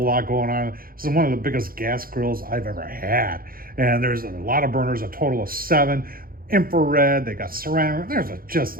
going on. This is one of the biggest gas grills I've ever had, and there's a lot of burners, a total of 7. Infrared, they got ceramic.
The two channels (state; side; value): late; left; 0.42 ms